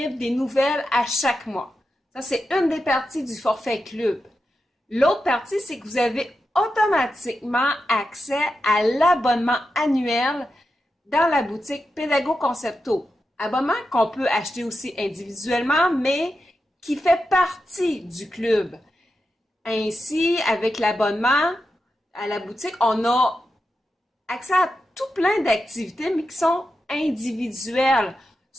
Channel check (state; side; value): normal; both; correlation 0.89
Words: des nouvelles à chaque mois. Ça, c'est une des parties du forfait club. L'autre partie, c'est que vous avez automatiquement accès à l'abonnement annuel dans la boutique Pédago Concepto. Abonnement qu'on peut acheter aussi individuellement, mais qui fait partie du club. Ainsi, avec l'abonnement à la boutique, on a accès à tout plein d'activités, mais qui sont individuelles,